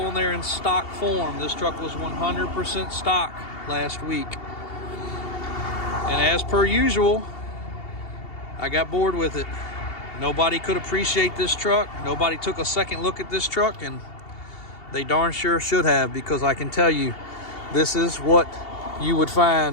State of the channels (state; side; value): late; right; 2.8 ms